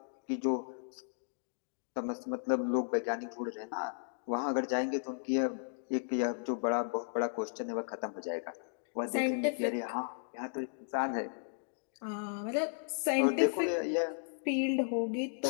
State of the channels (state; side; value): silent; right; digital silence